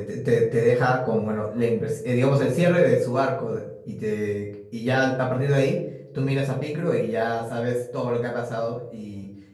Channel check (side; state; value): both; identical; correlation 1.00